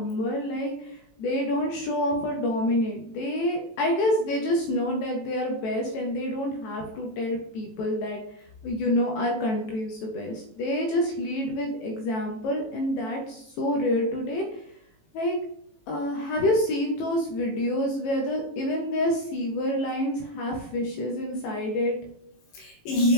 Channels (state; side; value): late; right; 18 ms